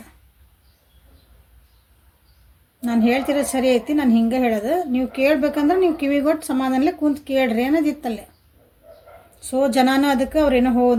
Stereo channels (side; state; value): both; identical; correlation 1.00